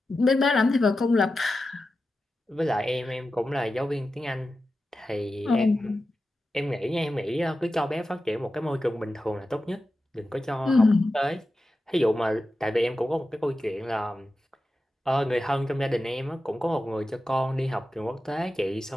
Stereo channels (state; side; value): normal; both; correlation 0.92